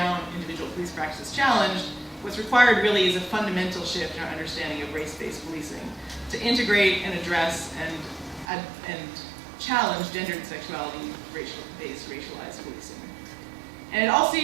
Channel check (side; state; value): left; drops out; at 8.5 s